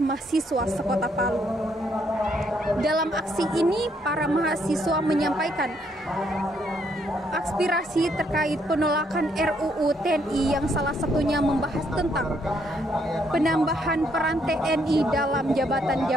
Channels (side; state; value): both; normal; correlation 0.72